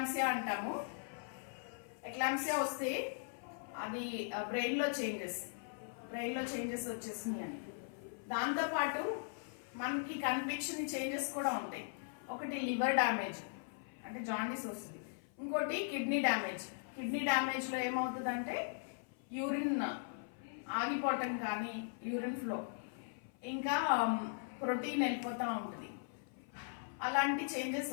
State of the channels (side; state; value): right; silent; 52 dB below the other